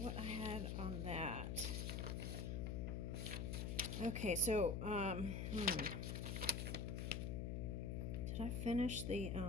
I had on that. Okay, so did I finish the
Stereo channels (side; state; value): left; noise; hum, 1 dB below the sound